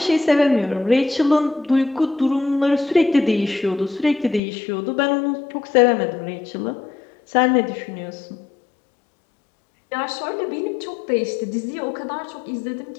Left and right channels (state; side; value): drops out; right; at 4.4 s